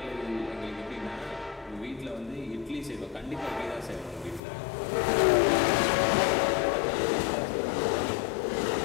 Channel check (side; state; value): right; drops out; at 4.4 s